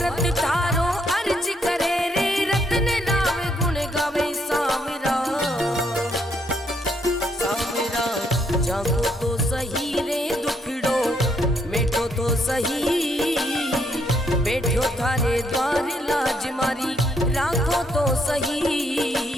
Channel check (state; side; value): normal; both; correlation 0.73